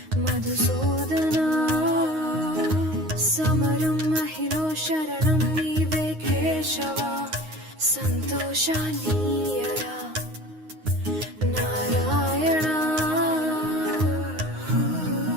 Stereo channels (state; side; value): late; left; 9.6 ms